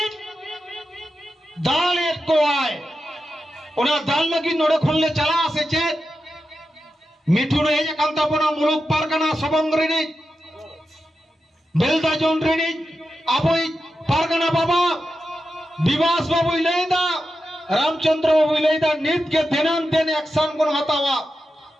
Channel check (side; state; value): both; normal; correlation 0.90